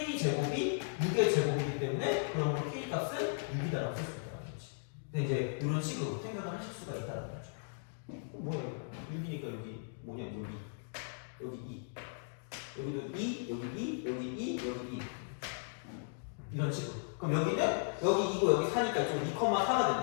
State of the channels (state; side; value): silent; right; digital silence